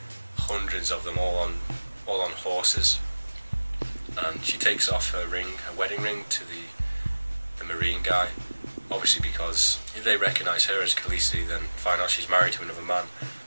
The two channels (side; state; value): both; inverted; correlation -1.00